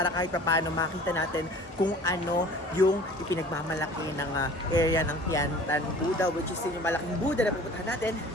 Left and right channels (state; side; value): normal; both; correlation 0.46